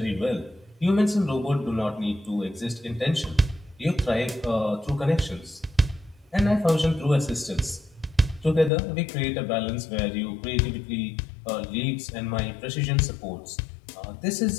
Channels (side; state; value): right; drops out; at 8.7 s